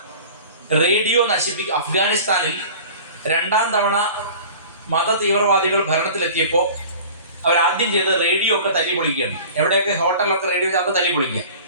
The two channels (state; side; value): inverted; both; correlation -0.41